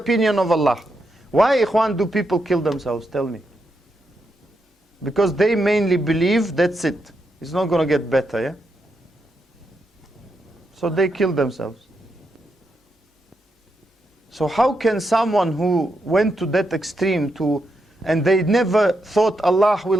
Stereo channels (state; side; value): normal; both; correlation 0.83